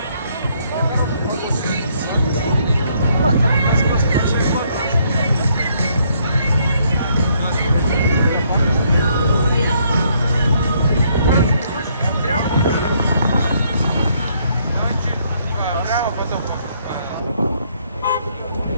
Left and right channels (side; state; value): both; inverted; correlation -0.69